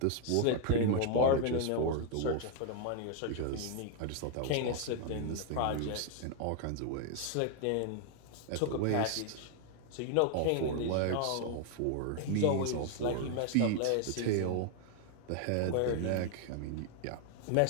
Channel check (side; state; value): both; different; correlation 0.00